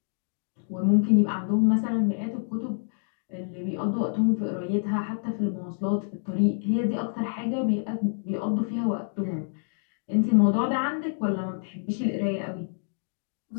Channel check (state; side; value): silent; right; digital silence